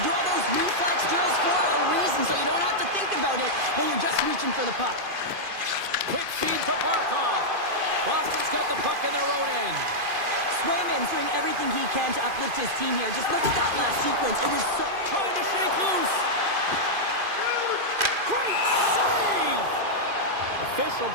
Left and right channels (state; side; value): late; left; 2.5 ms